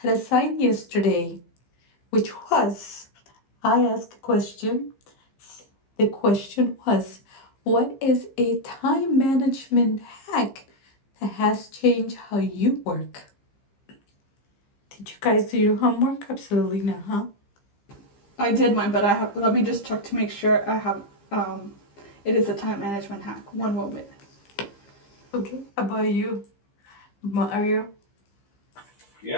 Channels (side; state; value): right; late; 15 ms